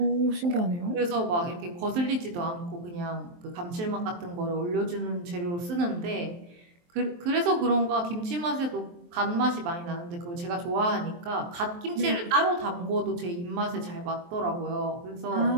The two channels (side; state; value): left; late; 23 ms